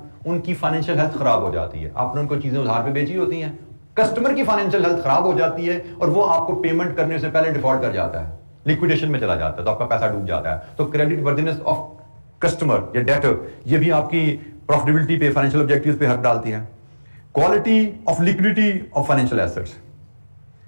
उनकी फाइनेंशियल हेल्थ खराब हो जाती है। आपने उनको चीजें उधार पे बेची होती हैं, कस्टमर की फाइनेंशियल हेल्थ खराब हो जाती है और वो आपको पेमेंट करने से पहले डिफॉल्ट कर जाता है, लिक्विडेशन में चला जाता है, तो आपका पैसा डूब जाता है। तो क्रेडिट वर्दिनेस ऑफ कस्टमर या डेटर, ये भी आपकी प्रॉफिटेबिलिटी पे, फाइनेंशियल ऑब्जेक्टिव्स पे हक डालती है। Quality of liquidity of financial assets,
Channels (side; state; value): both; inverted; correlation -1.00